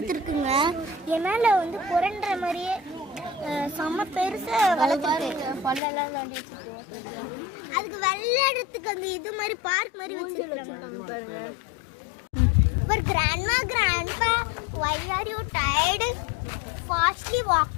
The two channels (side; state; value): right; drops out; at 5.8 s